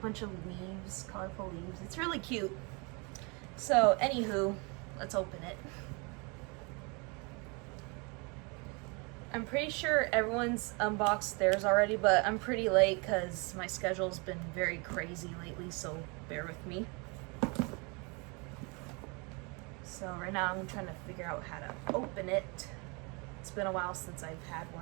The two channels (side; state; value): left; quieter; 30.7 dB